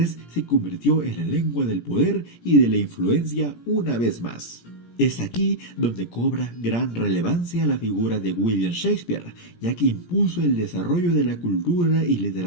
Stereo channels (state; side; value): late; right; 17 ms